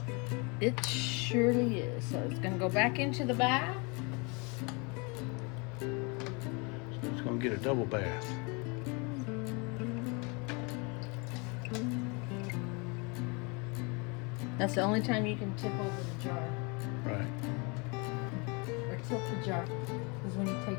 it surely is. So it's gonna go back into the bath. So it's going to get a double bath. That's the only time you can tip over the jar. Right. Or tilt the jar is when you take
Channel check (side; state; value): right; quieter; 31.0 dB